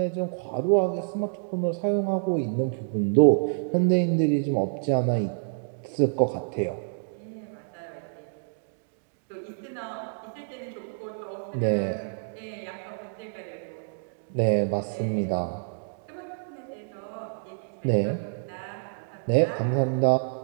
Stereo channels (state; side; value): silent; left; digital silence